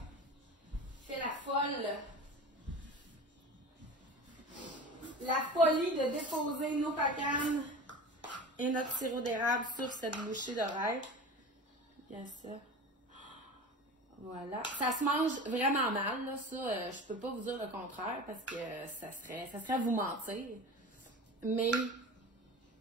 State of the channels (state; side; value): normal; both; correlation 0.34